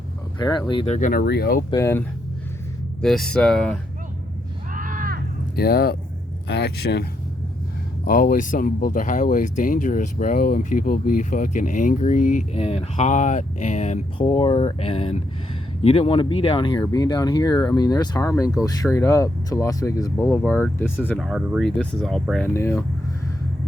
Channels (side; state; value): both; normal; correlation 0.78